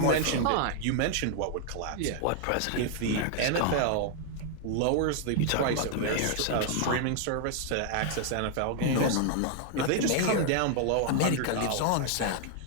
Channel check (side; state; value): both; different; correlation 0.00